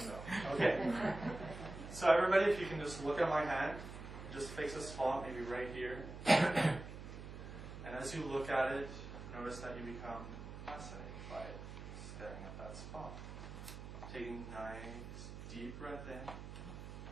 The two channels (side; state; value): right; noise; hum, 10 dB below the sound